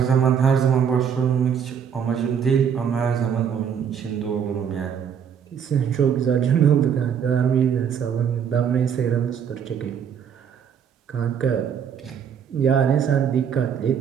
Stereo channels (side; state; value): left; quieter; 7.7 dB